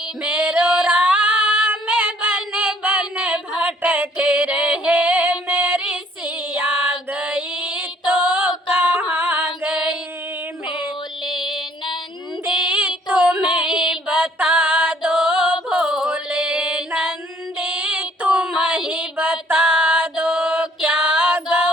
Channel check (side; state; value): both; normal; correlation 0.60